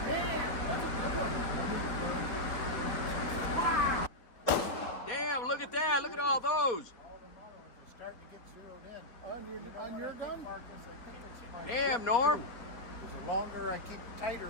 Damn, look at that. Look at all those. Starting to get zeroed in. On your gun? Damn, Norm. The longer I keep it tighter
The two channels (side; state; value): right; late; 3.8 ms